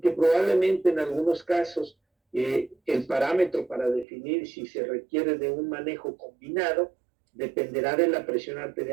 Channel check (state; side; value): drops out; left; at 4.0 s